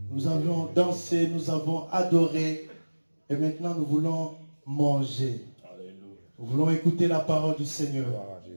Nous avons dansé, nous avons adoré. Et maintenant, nous voulons manger. Alléluia. Nous voulons écouter la parole du Seigneur. Gloire à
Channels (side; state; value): both; inverted; correlation -1.00